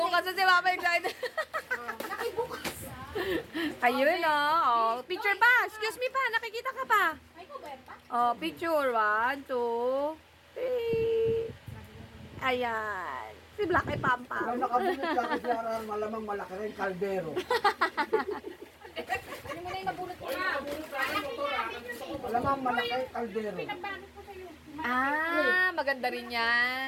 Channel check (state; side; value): identical; both; correlation 1.00